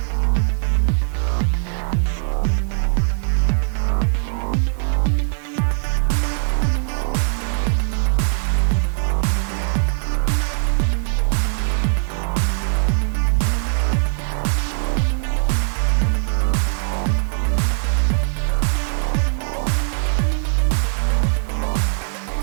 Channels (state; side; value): silent; left; digital silence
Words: So we have to call push, or not push, sorry, split. All right.